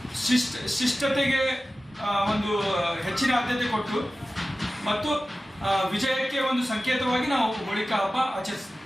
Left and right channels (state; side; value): normal; both; correlation 0.95